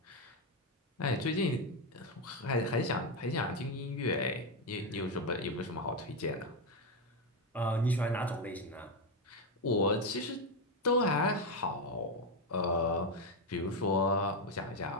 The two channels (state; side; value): normal; both; correlation 0.08